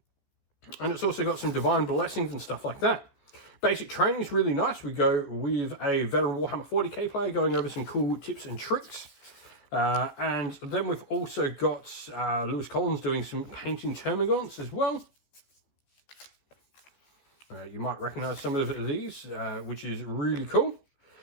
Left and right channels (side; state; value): right; late; 14 ms